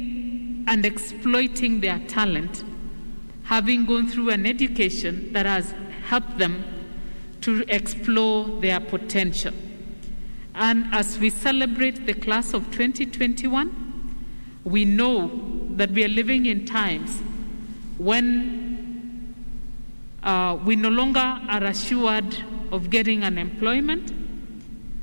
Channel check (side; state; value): both; inverted; correlation -1.00